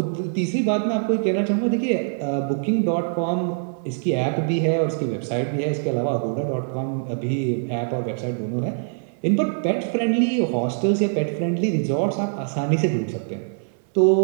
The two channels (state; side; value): silent; left; digital silence